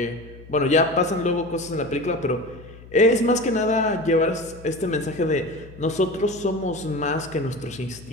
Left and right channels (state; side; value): noise; left; hum, 19 dB below the sound